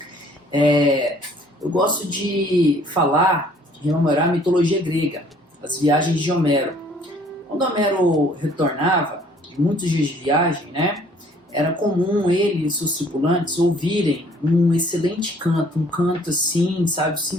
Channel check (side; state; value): both; normal; correlation 0.58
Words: Eu gosto de rememorar a mitologia grega, as viagens de Homero. Quando Homero retornava, de muitos dias de viagem, era comum ele e seus tripulantes ouvirem um excelente canto, um canto assim,